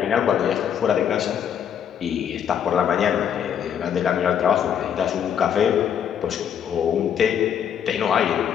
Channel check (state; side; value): quieter; right; 8.8 dB